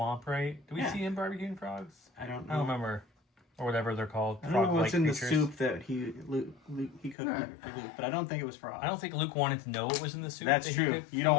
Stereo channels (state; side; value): drops out; right; at 7.2 s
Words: right? Do we Yeah. see him barbecuing frogs? I don't I know. don't remember. Or whatever they're called. I don't know Frog-like what's in the creatures. soup that he cooked Right. for Luke, but I don't think it was frog. I don't think Luke wanted to know what was in the soup. That's that he true. cooked You don't for